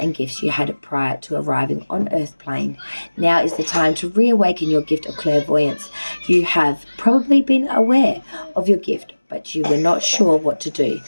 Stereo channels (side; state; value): both; inverted; correlation -1.00